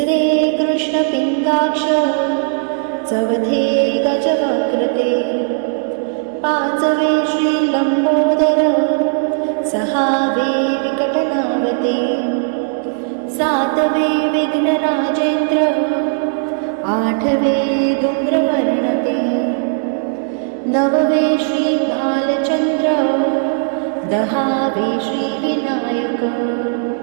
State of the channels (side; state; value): left; silent; 65 dB below the other